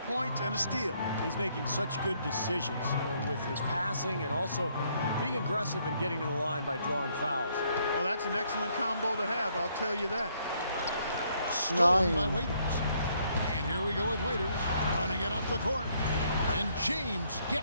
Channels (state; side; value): inverted; both; correlation -0.70